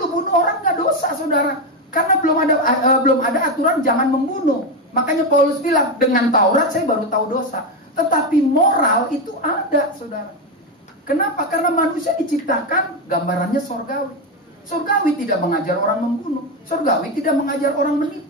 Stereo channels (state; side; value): normal; both; correlation 0.11